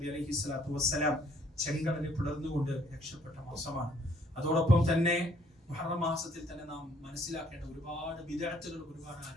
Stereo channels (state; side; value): normal; both; correlation 0.64